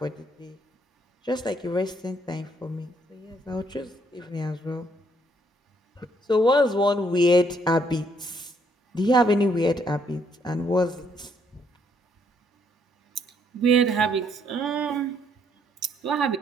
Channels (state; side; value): normal; both; correlation 0.69